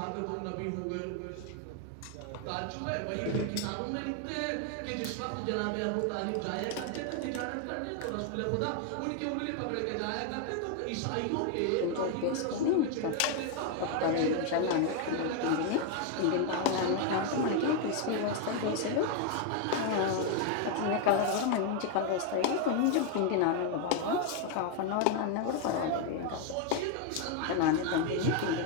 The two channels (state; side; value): different; both; correlation 0.01